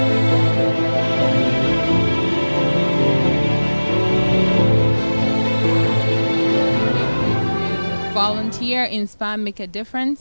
Volunteer, inspire, make a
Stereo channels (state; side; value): inverted; both; correlation -1.00